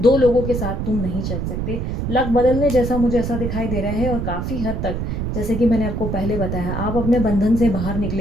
2 लोगों के साथ तुम नहीं चल सकते। लक बदलने जैसा मुझे ऐसा दिखाई दे रहा है और काफ़ी हद तक, जैसे कि मैंने आपको पहले बताया, आप अपने बंधन से बाहर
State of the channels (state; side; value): noise; right; rumble, 3 dB below the sound